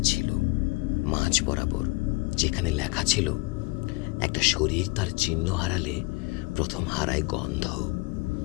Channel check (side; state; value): right; quieter; 24.8 dB